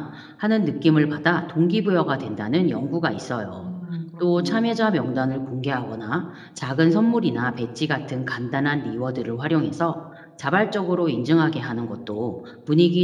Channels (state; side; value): identical; both; correlation 1.00